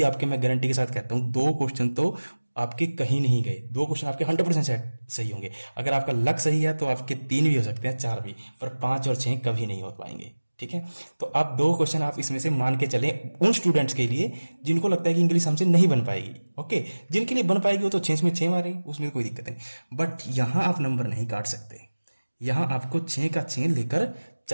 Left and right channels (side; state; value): both; inverted; correlation -1.00